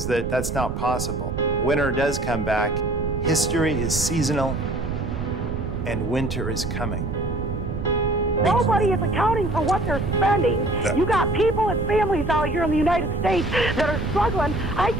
that that's not possible. Winter does come back. History is seasonal, and winter is coming. Nobody is accounting for what they're spending. You got people and families out here in the United States that are struggling. I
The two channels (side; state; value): right; noise; rumble, 5 dB below the sound